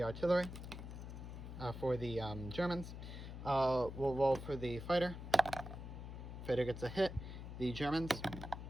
artillery for the Germans. We'll roll for the fighter. Fighter gets a hit. The Germans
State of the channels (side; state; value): left; noise; hum, 9 dB below the sound